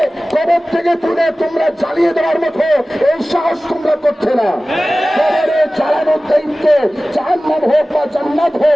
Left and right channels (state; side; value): normal; both; correlation 0.97